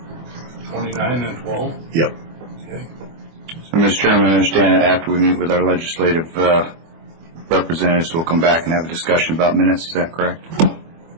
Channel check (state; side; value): late; left; 24 ms